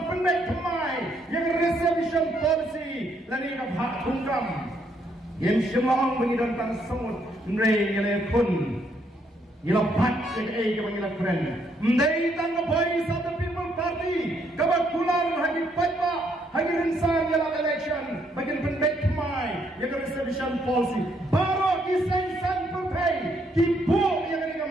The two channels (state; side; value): normal; both; correlation 0.72